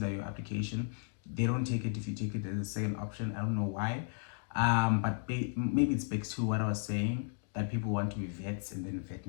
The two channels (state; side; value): silent; right; digital silence